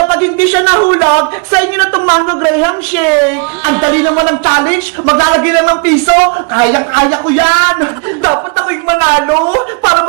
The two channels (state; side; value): quieter; left; 35.1 dB